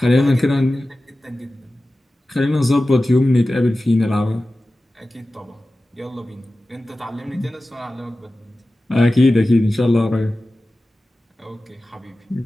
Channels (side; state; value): both; normal; correlation 0.95